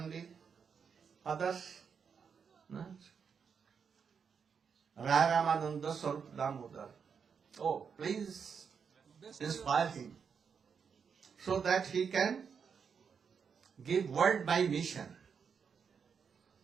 others, Ramananda Sarup Damodar. Oh, please inspire him so that he can give word by mission.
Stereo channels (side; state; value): left; quieter; 6.5 dB